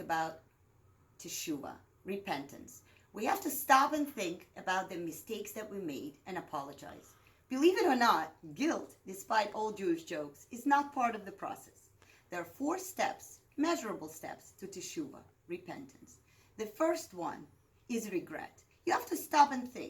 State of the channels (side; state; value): both; identical; correlation 1.00